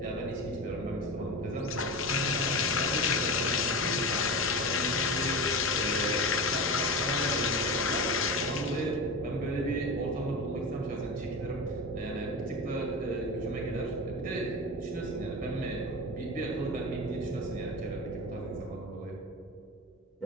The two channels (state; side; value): normal; both; correlation 0.25